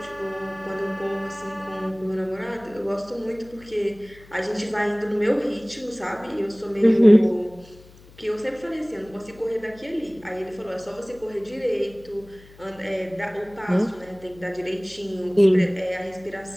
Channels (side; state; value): left; noise; hum, 23 dB below the sound